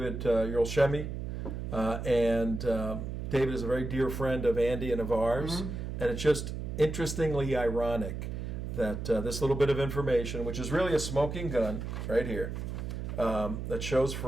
Yerlshemy. And David is a very dear friend of Andy and of ours. Mm-hmm. And it's just interestingly ironic that this little bit of information, which is really a smoking gun right here, that shows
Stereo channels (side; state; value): right; noise; hum, 5 dB below the sound